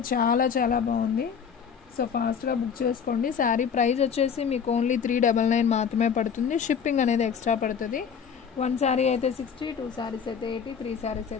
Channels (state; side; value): quieter; right; 6.9 dB